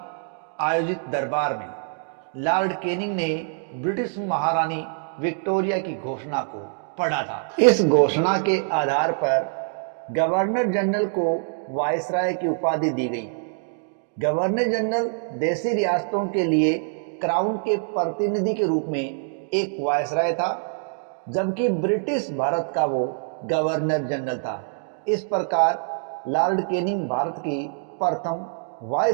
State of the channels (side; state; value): left; silent; digital silence